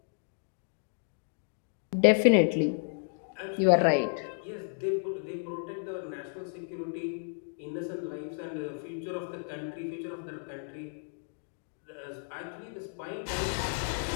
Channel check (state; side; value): silent; right; digital silence